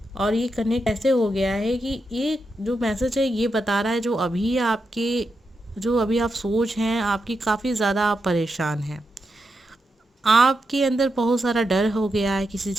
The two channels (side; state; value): both; normal; correlation 0.86